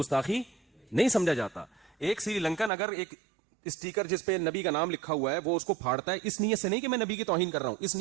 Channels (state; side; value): drops out; left; at 2.7 s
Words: نہیں سمجھا جاتا. ایک سری لنکن اگر ایک اسٹیکر جس پہ نبی کا نام لکھا ہوا ہے وہ اس کو پھاڑتا ہے, اس نیت سے نہیں کہ میں نبی کی توہین کر رہا ہوں, اس